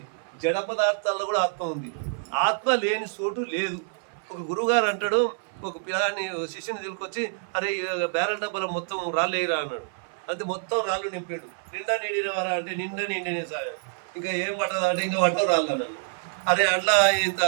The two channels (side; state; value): left; silent; 57 dB below the other